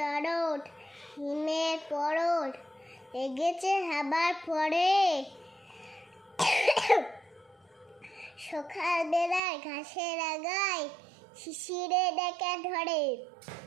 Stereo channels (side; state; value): left; drops out; at 9.4 s